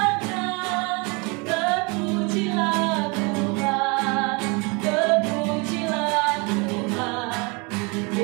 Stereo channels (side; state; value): left; quieter; 29.7 dB